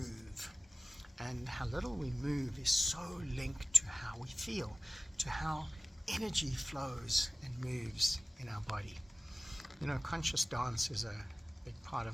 And how little we move is so linked to how we feel, to how energy flows and moves in our body. Conscious dance is a big part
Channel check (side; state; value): both; normal; correlation 0.96